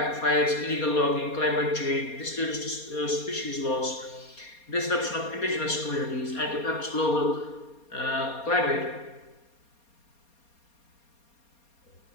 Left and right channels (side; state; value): right; late; 4.2 ms